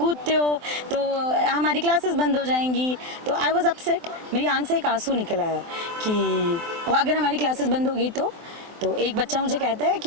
हो, तो हमारी क्लासेस बंद हो जाएंगी। तो आई वॉज अपसेट, मेरी आंख से एक आंसू निकल आया कि अगर हमारी क्लासेस बंद होगी तो एक बच्चा मुझे कहता है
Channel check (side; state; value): left; late; 24 ms